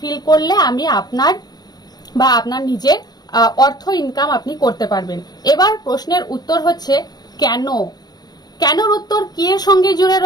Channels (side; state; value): right; late; 0.19 ms